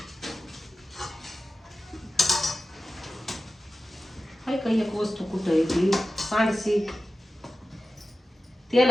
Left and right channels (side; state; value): both; normal; correlation 0.94